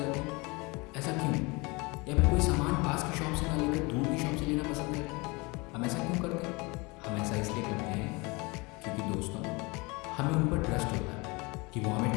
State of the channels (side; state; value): right; quieter; 26.2 dB